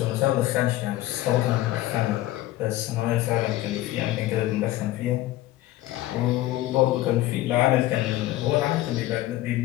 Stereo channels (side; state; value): right; quieter; 15.8 dB